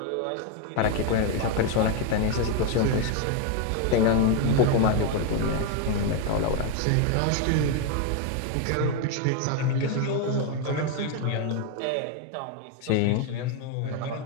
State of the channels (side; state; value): both; different; correlation 0.02